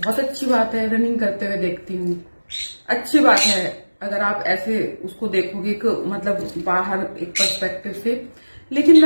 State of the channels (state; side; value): inverted; both; correlation -1.00